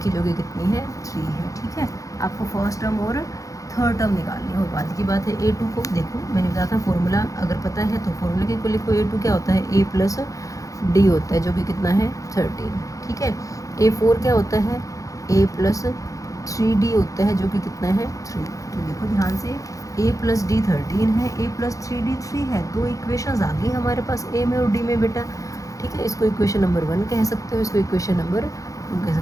है जो कि कितनी है 3 है। ठीक है, आपको फर्स्ट टर्म और थर्ड टर्म निकालनी है, और बाद की बात है A2 को देखो मैंने बताया था फॉर्मूला अगर पता है तो फॉर्मूला के को लिखो। A2 क्या होता है A+D होता है जो कि कितना है 13। ठीक है, A4 क्या होता है A+3D होता है जो कि कितना है 3। तो देखो ध्यान से A+D 13 है, A+3D 3 है, दो इक्वेशंस आ गई हमारे पास A में और D में बेटा। ठीक है, इसको इक्वेशन नंबर 1 कह सकते हो, इसको इक्वेशन नंबर 2 कह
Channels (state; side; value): late; right; 0.16 ms